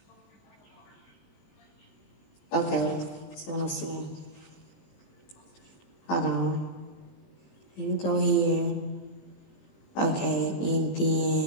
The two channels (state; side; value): late; right; 20 ms